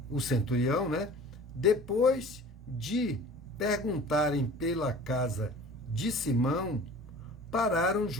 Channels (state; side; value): normal; both; correlation 0.43